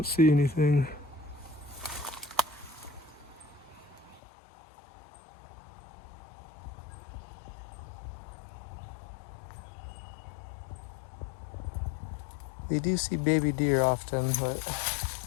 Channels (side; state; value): right; drops out; at 4.2 s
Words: see anything. We do see baby deer often, but